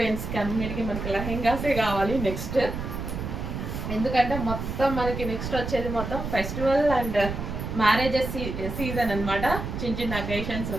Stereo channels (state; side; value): noise; right; rumble, 5 dB below the sound